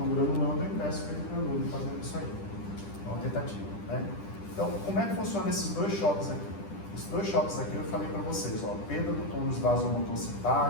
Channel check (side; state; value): right; late; 10 ms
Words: granulando, e peço para ele granule fazendo isso aí. É uma tentativa, né? Então, como é que funciona esses dois choques aqui? Esses dois choques aqui eu falei para vocês, ó, perda do tônus vasomotor